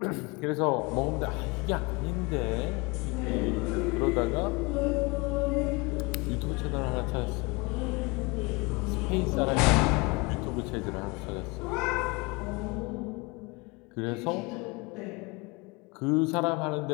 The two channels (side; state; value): right; quieter; 26.6 dB